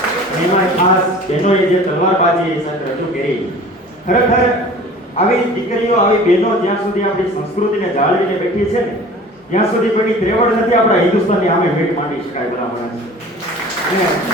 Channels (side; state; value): both; normal; correlation 0.43